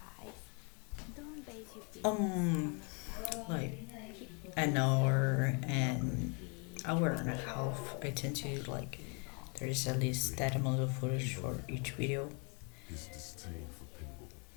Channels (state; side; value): quieter; right; 35.5 dB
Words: Um, like an hour and a half. I tend to like there is at least that amount of footage for each video.